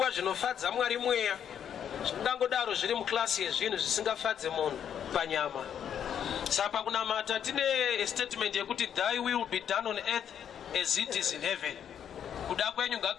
zvinofadza Mwari mweya zvingangodaro zviri muklasi yezvinhu zvisingafadze munhu panyama. Saka kunamata tine statement yekuti thy will be done on earth as it is in heaven. Kuda kwenyu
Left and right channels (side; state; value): right; quieter; 8.9 dB